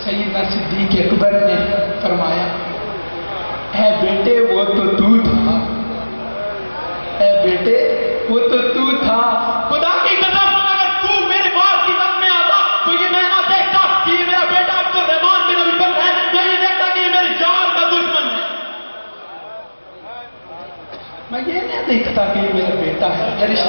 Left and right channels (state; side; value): inverted; both; correlation -1.00